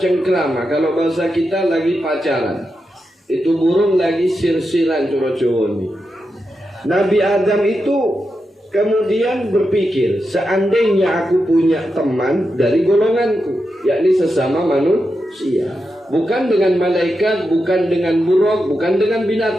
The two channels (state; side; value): normal; both; correlation 0.88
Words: Kalau bahasa kita lagi pacaran, itu burung lagi sir-siran coro-coro ini. Nabi Adam itu kemudian berpikir, seandainya aku punya teman dari golonganku, yakni sesama manusia, bukan dengan malaikat, bukan dengan buruk, bukan dengan